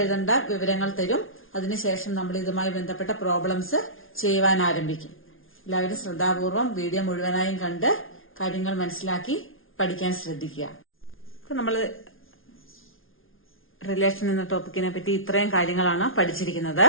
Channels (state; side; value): late; right; 0.59 ms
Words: വിവരങ്ങൾ തരും. അതിനുശേഷം നമ്മൾ ഇതുമായി ബന്ധപ്പെട്ട പ്രോബ്ലംസ് ചെയ്യുവാൻ ആരംഭിക്കും. എല്ലാവരും ശ്രദ്ധാപൂർവം വീഡിയോ മുഴുവനായും കണ്ട് കാര്യങ്ങൾ മനസ്സിലാക്കി പഠിക്കാൻ ശ്രദ്ധിക്കുക. നമ്മൾ റിലേഷൻ എന്ന ടോപ്പിക്കിനെ പറ്റി ഇത്രയും കാര്യങ്ങളാണ് പഠിച്ചിരിക്കുന്നത്.